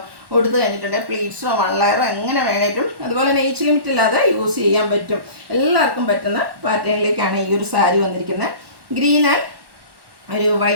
കൊടുത്തു കഴിഞ്ഞിട്ടുണ്ടെങ്കിൽ പ്ലീറ്റ്സോ 1 ലെയറോ എങ്ങനെ വേണേലും, അതുപോലെ തന്നെ ഏജ് ലിമിറ്റ് ഇല്ലാതെ യൂസ് ചെയ്യാൻ പറ്റും. എല്ലാവർക്കും പറ്റുന്ന പാറ്റേണിലേക്കാണ് ഈ ഒരു സാരി വന്നിരിക്കുന്നത്. ഗ്രീൻ ആൻഡ് ഒരു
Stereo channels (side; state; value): left; late; 1.1 ms